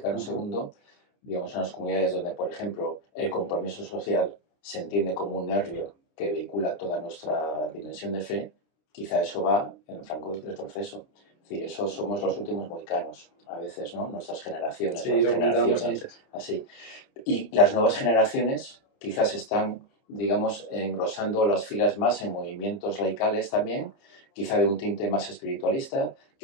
II, digamos, en las comunidades donde, por ejemplo, el compromiso social se entiende como un nervio que vehicula toda nuestra dimensión de fe, quizá eso va en franco retroceso. Es decir, eso somos los últimos mohicanos, a veces, ¿no? Nuestras generaciones. Sí, lo comentábamos antes. Así. Y las nuevas generaciones quizás están, digamos, engrosando las filas más en movimientos laicales también, quizá de un tinte más espiritualista,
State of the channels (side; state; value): right; late; 29 ms